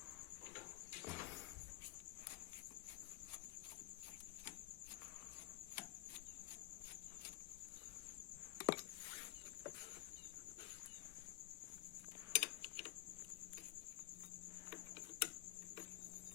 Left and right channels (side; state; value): right; quieter; 16.5 dB